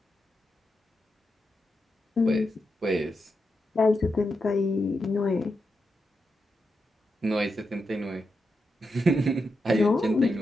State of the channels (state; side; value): normal; both; correlation 0.86